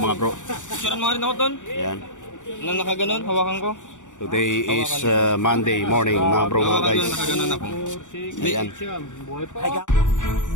bro. Picturean mo rin ako doon. Yan. Na nakaganon, hawakan ko. Today is Monday morning mga bro mga guys. Nakaganon ako. Ayan.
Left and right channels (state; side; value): late; right; 0.86 ms